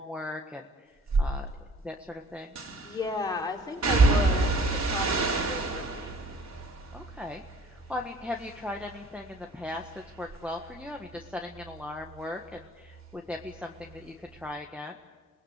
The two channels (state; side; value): normal; both; correlation 0.54